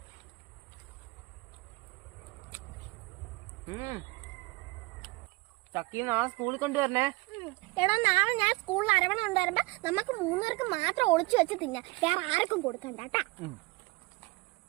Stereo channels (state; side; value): quieter; left; 23.6 dB